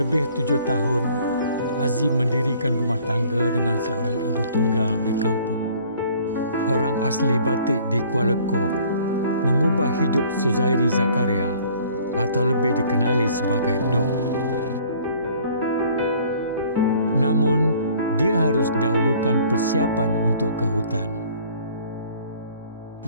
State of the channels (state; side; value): inverted; both; correlation -0.55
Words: 7 tahun, Azim mendirikan rumah tangga dengan seorang ibu tunggal di kampung. Orang asli Batik di Kuala Koh mengubah hidup Suzairi Zakaria atau lebih dikenali sebagai Dong. Namun, dia harus dahulukan persiapan untuk ke hutan.